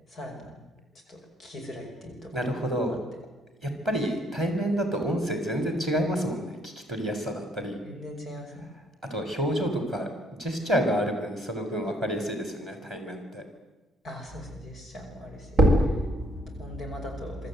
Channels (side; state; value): both; normal; correlation 0.66